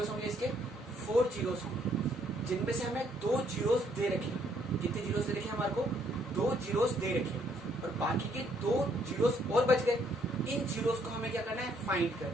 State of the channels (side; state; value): both; normal; correlation 0.68